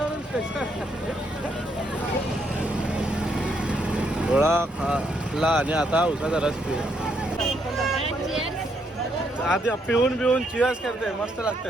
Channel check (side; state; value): both; normal; correlation 0.75